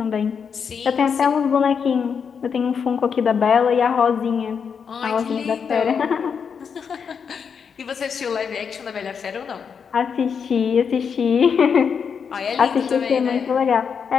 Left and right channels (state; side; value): quieter; right; 6.5 dB